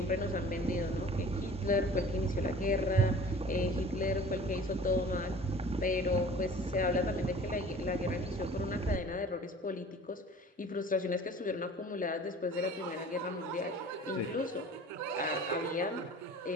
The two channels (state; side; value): normal; both; correlation 0.45